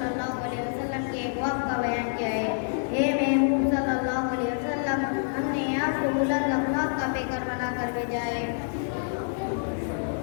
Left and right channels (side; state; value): right; silent; digital silence